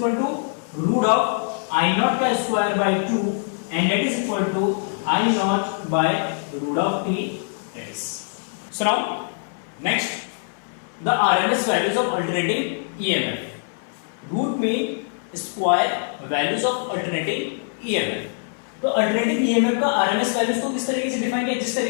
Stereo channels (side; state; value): right; silent; 60 dB below the other